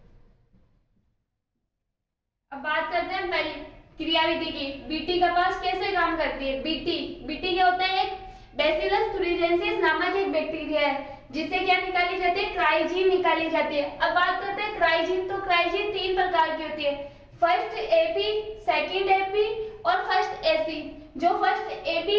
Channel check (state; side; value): identical; both; correlation 1.00